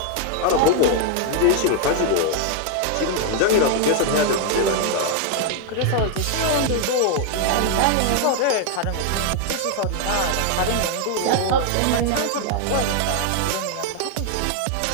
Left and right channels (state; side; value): different; both; correlation 0.00